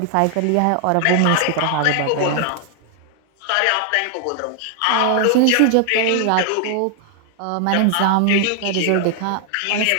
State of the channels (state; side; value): different; both; correlation 0.00